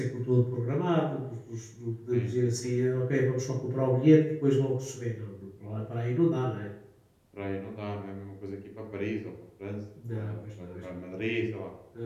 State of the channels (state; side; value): identical; both; correlation 1.00